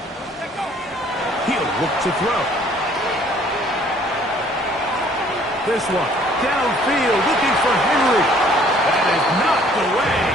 He'll look to throw. This one, downfield, looking for Henry. That is knocked away,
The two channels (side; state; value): both; normal; correlation 0.58